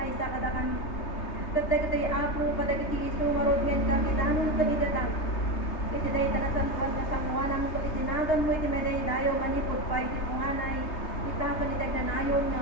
sa kada kami. Tatay iti ako kada iti iso nga rod ngayon kami danon kabidata. Iti dahi tanasan nga sanguanan mo iti tinagan mo iti meday dayo manipod pa iti punganay ita kanitag na nayon nga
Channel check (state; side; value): late; right; 3.3 ms